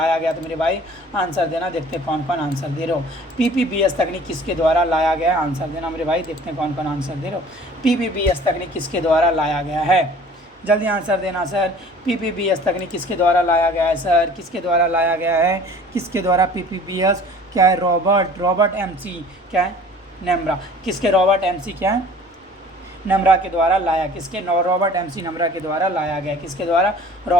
गया, तो मेरे भाई आंसर देना। देखते हैं कौन कौन आंसर दे रहे हो। PPBS तकनीक किसके द्वारा लाया गया, आंसर देना मेरे भाई। देखते हैं कौन कौन आंसर दे रहे हो। PPBS तकनीक किसके द्वारा लाया गया है, जल्दी आंसर देना सर। PPBS तकनीक किसके द्वारा लाया गया है सर? किसके द्वारा लाया गया है? किसके द्वारा? PPBS क्या है? रॉबर्ट MC क्या है? नम्रा। किसके? रॉबर्ट MC क्या है? नम्रा के द्वारा लाया। किसके? रॉबर्ट MC नम्रा के द्वारा लाया गया। किसके द्वारा?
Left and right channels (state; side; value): normal; both; correlation 0.48